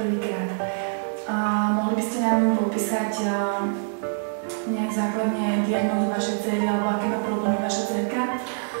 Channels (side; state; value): left; silent; 61 dB below the other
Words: Mohli by ste nám popísať nejak základne diagnózu vašej dcery, alebo aké má problémy vaša dcerka?